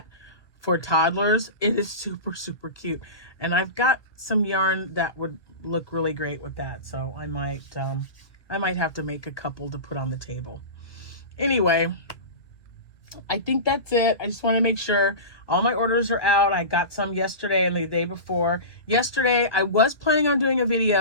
for toddlers. It is super, super cute. And I've got some yarn that would look really great with that. So I might have to make a couple to put on the table. Anyway, I think that's it. I just want to make sure all my orders are out. I got some yesterday and the day before. Yesterday, I was planning on doing a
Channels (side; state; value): right; late; 1.4 ms